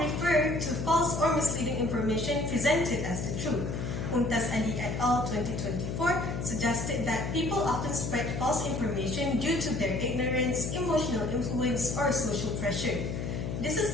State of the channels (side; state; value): left; noise; hum, 4 dB below the sound